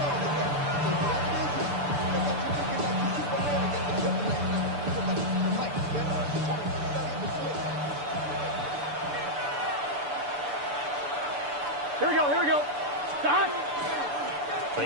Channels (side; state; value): left; late; 6.9 ms